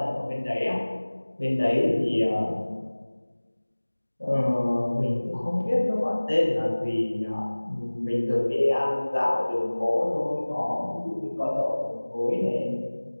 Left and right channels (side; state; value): both; inverted; correlation -1.00